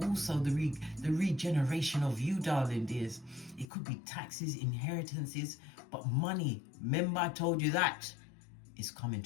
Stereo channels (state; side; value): drops out; right; at 3.7 s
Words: also the regeneration of you, darling dears. It could be taxes, inheritances, but money. Remember, I told you that. It's coming